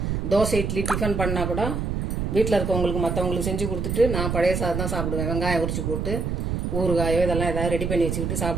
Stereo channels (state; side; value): noise; right; rumble, 1 dB below the sound